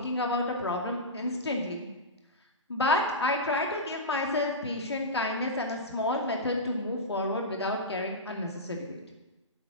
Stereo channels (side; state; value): both; normal; correlation -0.16